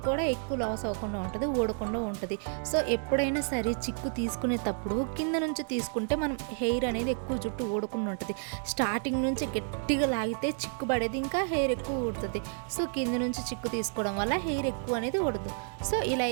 కూడా ఎక్కువ లాస్ అవ్వకుండా ఉంటుంది, ఊడకుండా ఉంటుంది. సో ఎప్పుడైనా సరే చిక్కు తీసుకునేటప్పుడు కింద నుంచి తీసుకుంటే మనం హెయిర్ అనేది ఎక్కువ జుట్టు ఊడకుండా ఉంటుంది. స్టార్టింగ్ నుంచి గట్టిగా లాగితే చిక్కు పడేది, ఇంకా హెయిర్ ఎక్కువ ఊడుతుంది. సో కింద నుంచి చిక్కు తీసుకోవడం వల్ల హెయిర్ ఎక్కువ అనేది ఊడదు. సో ఇలా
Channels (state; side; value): silent; left; 57 dB below the other